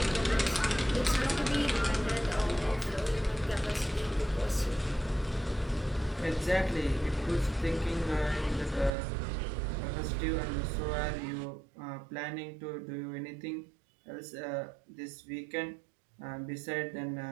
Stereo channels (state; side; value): drops out; left; at 8.9 s